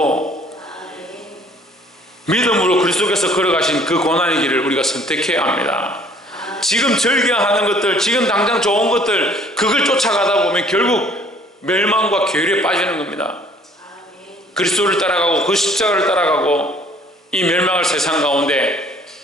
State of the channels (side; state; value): both; normal; correlation 0.57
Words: 믿음으로 그리스도께서 걸어가신 그 고난의 길을 우리가 선택해야 합니다. 지금 즐겨하는 것들, 지금 당장 좋은 것들, 그걸 쫓아가다 보면 결국 멸망과 괴리에 빠지는 겁니다. 그리스도를 따라가고 그 십자가를 따라가고 이 멸망할 세상 가운데